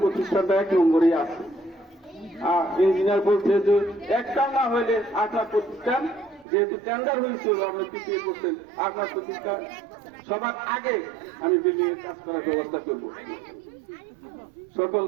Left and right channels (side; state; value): left; drops out; at 6.5 s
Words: প্রতিষ্ঠানটা 1 নম্বরে আছে। আর ইঞ্জিনিয়ার বলছে যে একটা না হইলে আপনার প্রতিষ্ঠান, যেহেতু টেন্ডার হয়েছিল আপনি পিছিয়ে পড়ছেন, আপনার প্রতিষ্ঠান সবার আগে আমি বিল্ডিং এর কাজ করার ব্যবস্থা করব।